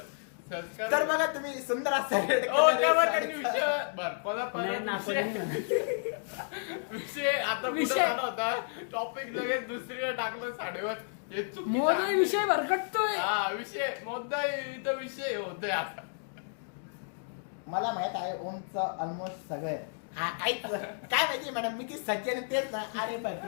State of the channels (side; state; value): right; silent; digital silence